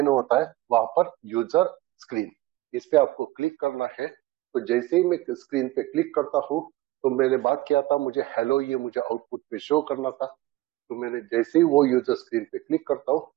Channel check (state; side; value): quieter; left; 17.7 dB